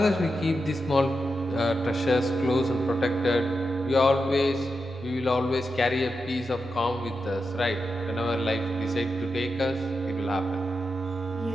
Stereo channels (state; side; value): normal; both; correlation 0.88